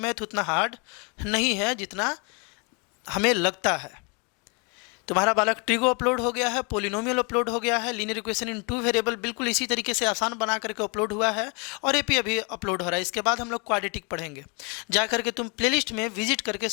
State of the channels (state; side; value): quieter; right; 32.9 dB